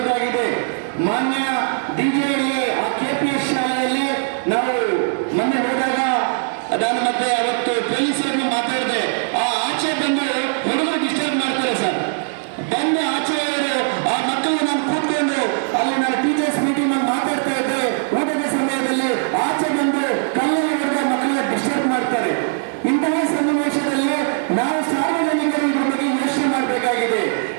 ಮಾನ್ಯ ಡಿಜಿಎಲ್ಎ ಆ KPS ಶಾಲೆಯಲ್ಲಿ ನಾವು ಮೊನ್ನೆ ಹೋದಾಗ ನಾನು ಮತ್ತೆ ಅವತ್ತು ಪೊಲೀಸರನ್ನು ಮಾತಾಡಿದೆ. ಆಚೆ ಬಂದು ಹುಡುಗರು ಡಿಸ್ಟರ್ಬ್ ಮಾಡ್ತಾರೆ ಸರ್. ಬಂದು ಆಚೆ ಆ ಮಕ್ಕಳು ನಾನು ಕೂತ್ಕೊಂಡು ಅಲ್ಲಿ ನಾನು ಟೀಚರ್ಸ್ ಮೀಟಿಂಗ್ ಅಲ್ಲಿ ಮಾತಾಡ್ತಾ ಇದ್ದೆ. ಊಟದ ಸಮಯದಲ್ಲಿ ಆಚೆ ಬಂದು ಕಲ್ಲಲ್ಲಿ ಹೊಡೆದ ಮಕ್ಕಳನ್ನ ಡಿಸ್ಟರ್ಬ್ ಮಾಡ್ತಾರೆ. ಇಂತಹ ಸನ್ನಿವೇಶದಲ್ಲಿ ನಾವು ಸಾರ್ವಜನಿಕರು ಇದ್ರ ಬಗ್ಗೆ ಯೋಚನೆ ಮಾಡಬೇಕಾಗಿದೆ.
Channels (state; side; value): silent; left; digital silence